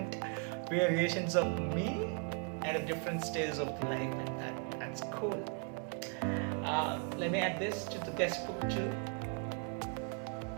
variations of me at a different stage of life, and that's cool. Let me add this to the guest book too.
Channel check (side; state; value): left; quieter; 35.9 dB